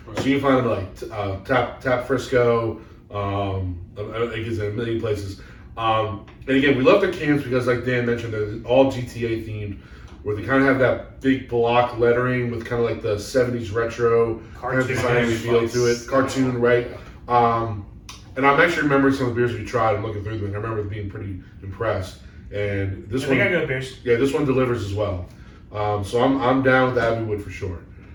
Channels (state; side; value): identical; both; correlation 1.00